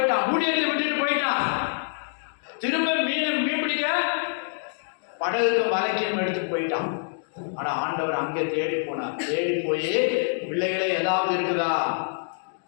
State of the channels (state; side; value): silent; right; digital silence